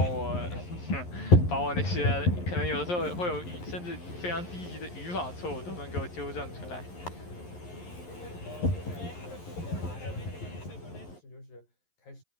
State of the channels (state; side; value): late; right; 11 ms